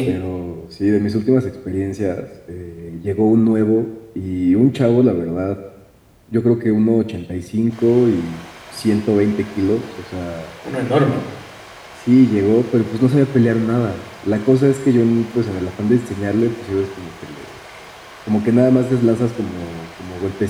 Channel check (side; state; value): both; identical; correlation 1.00